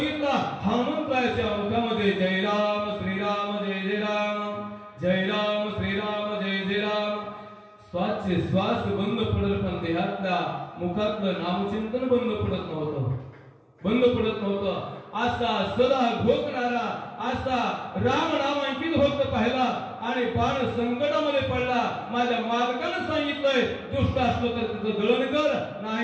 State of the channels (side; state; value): both; identical; correlation 1.00